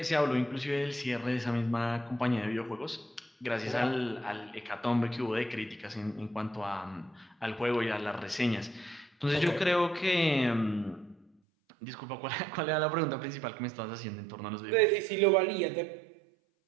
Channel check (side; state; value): left; drops out; at 11.2 s